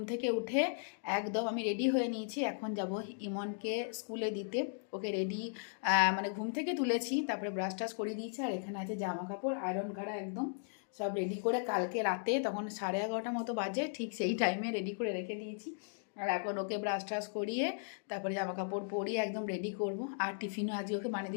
থেকে উঠে একদম আমি রেডি হয়ে নিয়েছি। এখন যাব ইমনকে স্কুলে দিতে। ওকে রেডি মানে ঘুম থেকে তুলেছি, তারপরে ব্রাশ টাশ করিয়ে দিয়েছি। আর এখানে আছে জামা কাপড় আয়রন করা, একদম সব রেডি করে কালকে রাতে তখন 11:30 মতো বাজে, ঠিক সেই টাইমে রেডি করে রেখে দিয়েছি। আর এখন ওকে ব্রাশ ট্রাশ করিয়ে তারপরে জামা কাপড় পরিয়ে একদম রেডি করব। আর টিফিনও আজকে ওকে বানিয়ে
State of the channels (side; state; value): right; silent; digital silence